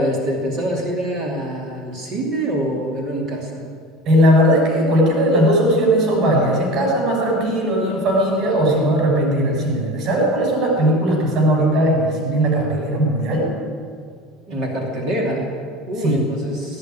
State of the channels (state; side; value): normal; both; correlation 0.34